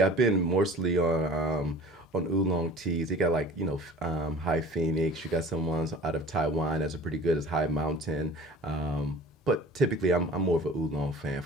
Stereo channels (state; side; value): normal; both; correlation 0.43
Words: I've been mostly on oolong teas. You got like High Phoenix. You got some ones out of Taiwan that's pretty good as High Mountain. But typically, I'm more of an oolong fan